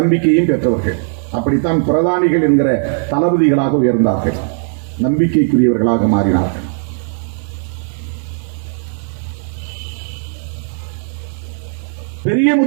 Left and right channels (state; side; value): silent; left; digital silence